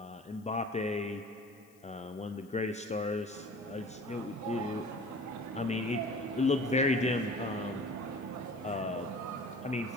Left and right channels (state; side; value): noise; left; hiss, 29 dB below the sound